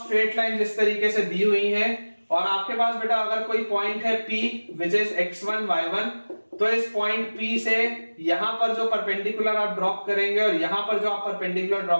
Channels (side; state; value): both; inverted; correlation -1.00